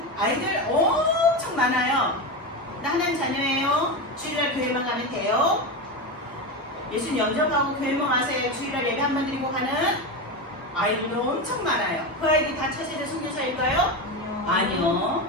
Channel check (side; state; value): both; normal; correlation 0.18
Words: 아이들 엄청 많아요. 나 하나님 자녀예요. 주일날 교회만 가면 돼요. 예수님 영접하고 교회만 와서 주일날 예배 한번 드리고 가는 아이들도 엄청 많아요. 그 아이들이 다 차세대 선교사일까요? 아니요.